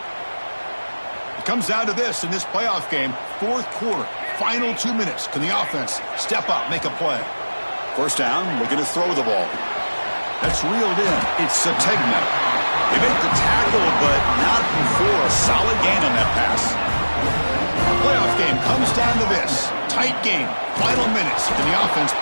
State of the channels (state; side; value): inverted; both; correlation -1.00